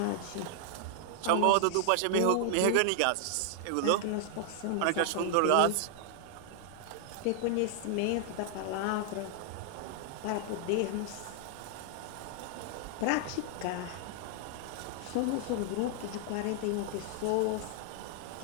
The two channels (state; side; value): different; both; correlation 0.00